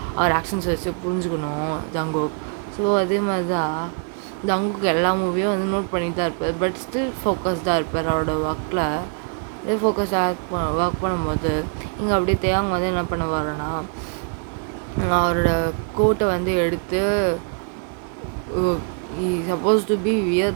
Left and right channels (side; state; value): left; quieter; 39.8 dB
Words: அவர் ஆக்ஷன்ஸ் வச்சு புரிஞ்சுக்கணும் ஜங்குக். ஸோ அதே மாதிரி தான் ஜங்குக்கு எல்லா மூவியும் வந்து நோட் பண்ணிட்டு தான் இருப்பார். பட் ஸ்டில் ஃபோக்கஸ்டாக இருப்பார் அவரோட ஒர்க்கில். அப்படியே ஃபோக்கஸ்டாக ஒர்க் பண்ணும்போது இங்கே அப்படியே தேவங்க வந்து என்ன பண்ணுவாருன்னா அவரோட கோட்டை வந்து எடுத்து சப்போஸ் டு பி